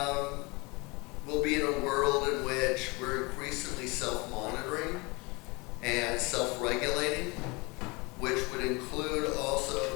We'll be in a world in which we're increasingly self-monitoring and self-regulating, which would include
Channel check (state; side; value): quieter; right; 26.4 dB